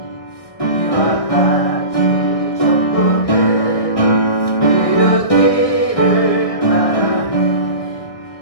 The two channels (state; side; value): late; right; 1.6 ms